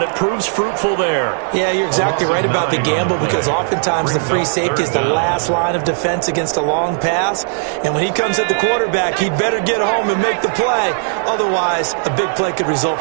it proves fruitful there. Yeah, you're exactly right about the gamble, because oftentimes the free safety is the last line of defense against a long pass. And when he comes at the quarterback, he'd better get home and make the play. Otherwise, a big play could result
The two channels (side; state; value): left; silent; 68 dB below the other